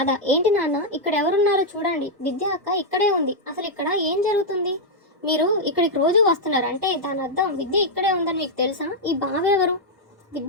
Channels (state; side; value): normal; both; correlation -0.03